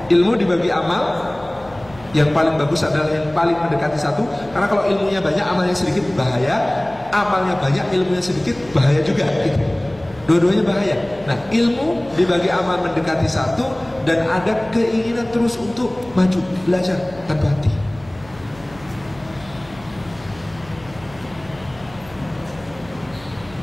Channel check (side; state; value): left; noise; hum, 22 dB below the sound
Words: Ilmu dibagi amal, Yang paling bagus adalah yang paling mendekati satu. Karena kalau ilmunya banyak, amalnya sedikit, bahaya. Amalnya banyak, ilmunya sedikit, bahaya juga gitu. Dua-duanya bahaya. Nah, ilmu dibagi amal mendekati satu, dan ada keinginan terus untuk maju, belajar tanpa henti.